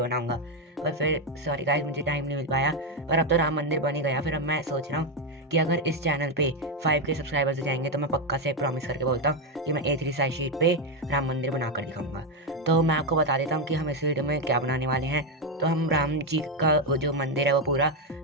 बनाऊंगा, पर फिर सॉरी गाइस मुझे टाइम नहीं मिल पाया। पर अब तो राम मंदिर बन ही गया। फिर अब मैं सोच रहा हूँ कि अगर इस चैनल पे 5K सब्सक्राइबर्स हो जाएंगे तो मैं पक्का से प्रॉमिस करके बोलता हूँ कि मैं A3 साइज शीट पे राम मंदिर बना कर दिखाऊंगा। तो मैं आपको बता देता हूँ कि हम इस वीडियो में क्या बनाने वाले हैं। तो हम राम जी का वो जो मंदिर है वो पूरा,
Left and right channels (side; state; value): both; normal; correlation 0.06